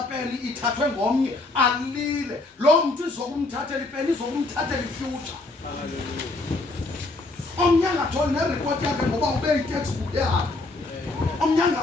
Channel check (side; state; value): right; quieter; 3.1 dB